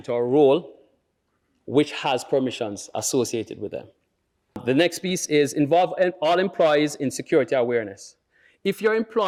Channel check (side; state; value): both; identical; correlation 1.00